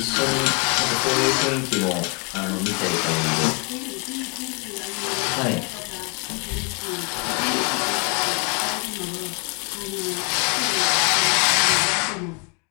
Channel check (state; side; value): quieter; right; 32.7 dB